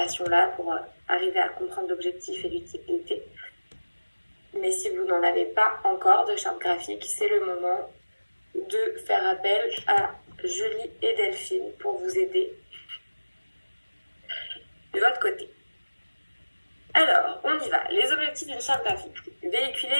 pour arriver à comprendre l'objectif et l'utilité. Mais si vous n'en avez pas encore de charte graphique, c'est le moment de faire appel à Julie et Delphine pour vous aider de votre côté. Alors, on y va. Les objectifs d'une charte graphique.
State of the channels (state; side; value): inverted; both; correlation -1.00